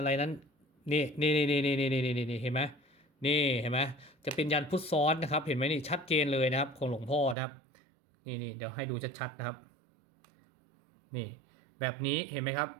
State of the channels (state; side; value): drops out; left; at 7.4 s